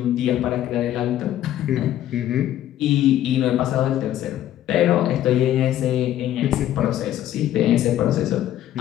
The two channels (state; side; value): quieter; right; 12.3 dB